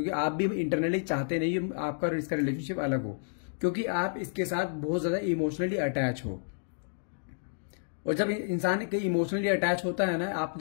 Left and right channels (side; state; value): right; silent; digital silence